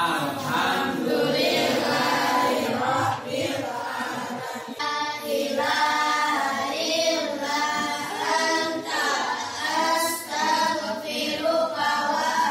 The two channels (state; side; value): identical; both; correlation 1.00